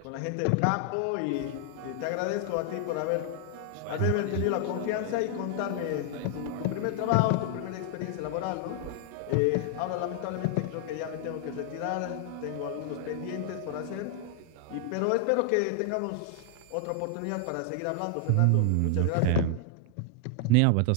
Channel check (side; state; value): both; different; correlation 0.00